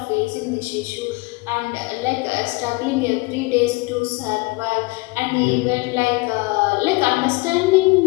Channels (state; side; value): quieter; right; 24.5 dB